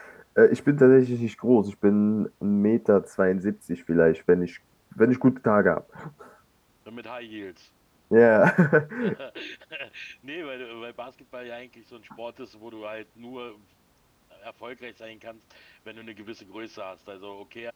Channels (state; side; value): identical; both; correlation 1.00